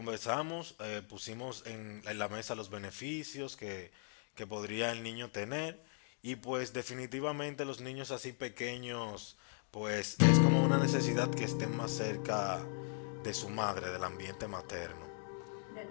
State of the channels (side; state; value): right; silent; 52 dB below the other